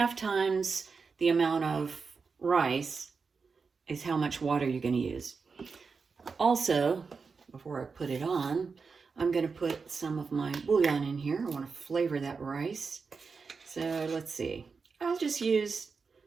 times the amount of rice is how much water you're going to use. Also, before I put it on, I'm going to put some of my bouillon in here. I want to flavor that rice. So let's see. I'll just use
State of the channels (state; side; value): quieter; left; 5.0 dB